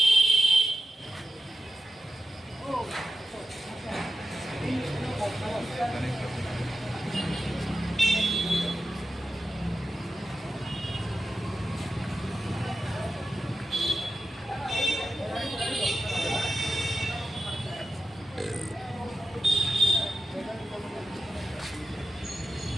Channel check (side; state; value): both; normal; correlation 0.91